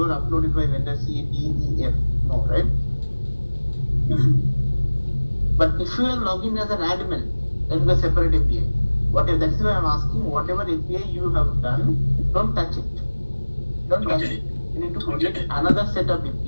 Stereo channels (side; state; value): both; inverted; correlation -1.00